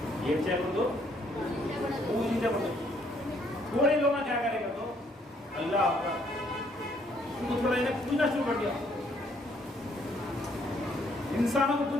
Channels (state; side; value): normal; both; correlation 0.67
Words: ఏం చేయకూడదు, పూజించకూడదు. थोड़े लोग क्या करेगा तो अल्लाह उनको थोड़ा इन्हें पूजना शुरू कर दिया, इंसानों को